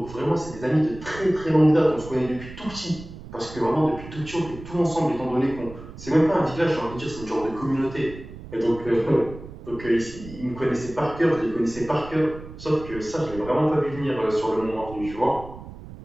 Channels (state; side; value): noise; right; rumble, 14 dB below the sound